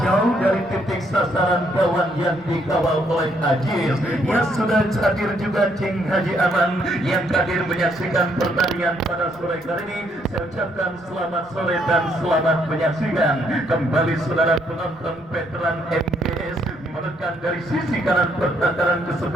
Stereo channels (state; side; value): noise; left; rumble, 27 dB below the sound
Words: dari titik sasaran kawan yang dikawal oleh Aziz. Ya, sudah hadir juga Cing Haji Aman yang hadir menyaksikan menyaksikan pertandingan pada sore kali ini. Saya ucapkan selamat sore dan selamat menyaksikan. Kembali saudara penonton veteran MGS menekan dari sisi kanan pertahanan